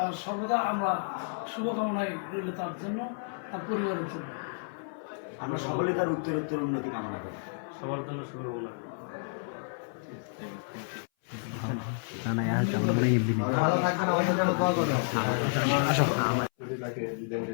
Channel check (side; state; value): right; silent; 57 dB below the other